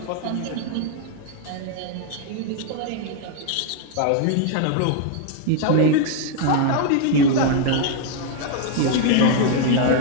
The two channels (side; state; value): both; different; correlation 0.00